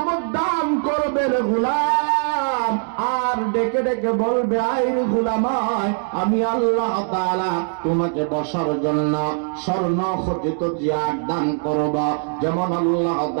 দান করবে রে গোলাম। আর ডেকে ডেকে বলবে, আইরে গোলামায় আমি আল্লাহ তাআলা তোমাকে বসার জন্য স্বর্ণ খচিত চেয়ার দান করব। যেমন আল্লাহ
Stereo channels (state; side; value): silent; left; 65 dB below the other